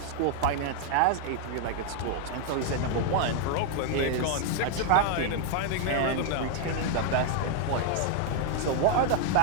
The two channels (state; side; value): different; both; correlation 0.00